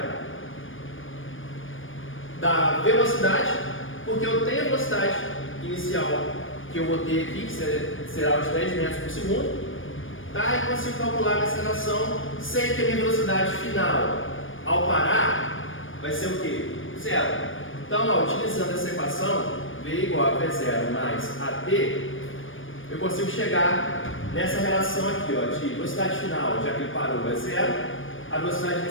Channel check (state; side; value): late; right; 0.58 ms